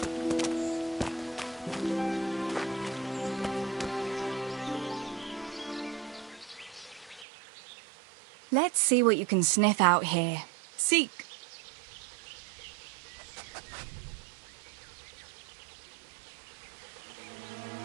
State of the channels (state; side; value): drops out; left; at 7.2 s